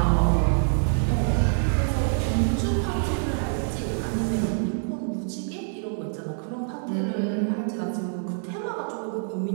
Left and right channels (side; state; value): left; silent; digital silence